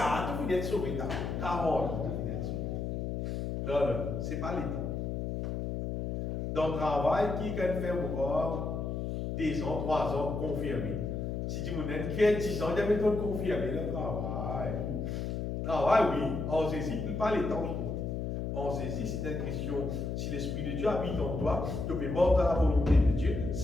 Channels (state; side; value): noise; left; hum, 2 dB below the sound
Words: tu viens être sauvé. 40 ans, tu viens être sauvé. Non, ce n'est pas les temps. Dans le travail, qui peut faire encore 2 ans, 3 ans, confirmé. Si tu me dis qui a 10 ans, il y a méthode confirmée, le travail. Travail, oui. En saisit, pas les temps. En saisit, c'est une question. Si l'Esprit de Dieu habite en toi, tu peux mort dans la volonté de Dieu,